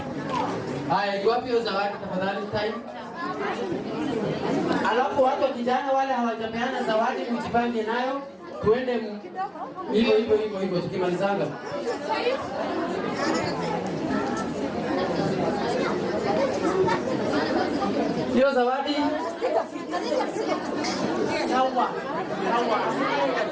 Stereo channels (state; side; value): identical; both; correlation 1.00